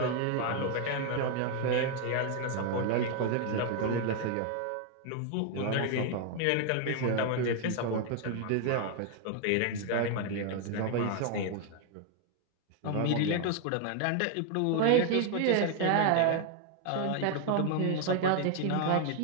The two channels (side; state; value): both; different; correlation 0.00